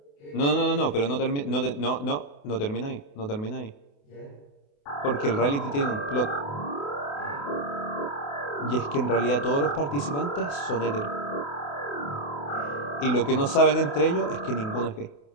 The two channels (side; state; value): right; late; 28 ms